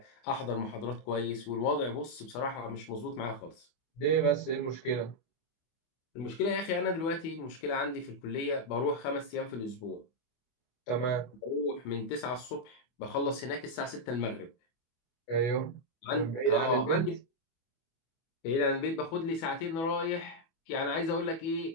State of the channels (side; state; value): right; late; 24 ms